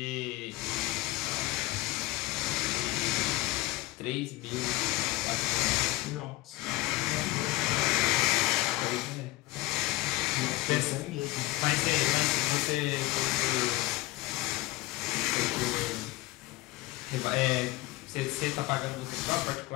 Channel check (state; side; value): quieter; right; 19.3 dB